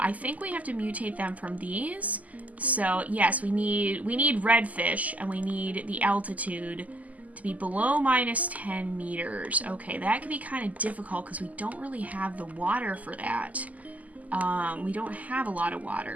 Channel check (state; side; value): late; left; 0.075 ms